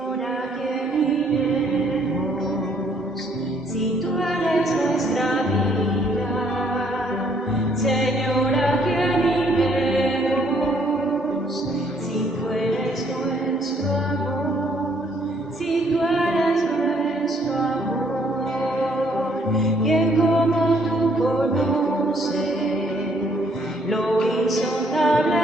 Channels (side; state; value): both; normal; correlation 0.66